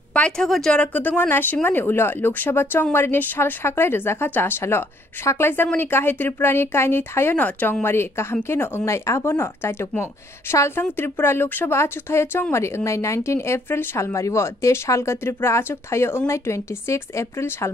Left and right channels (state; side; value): normal; both; correlation 0.66